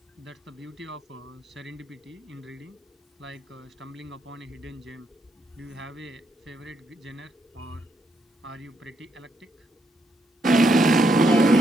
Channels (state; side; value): normal; both; correlation 0.77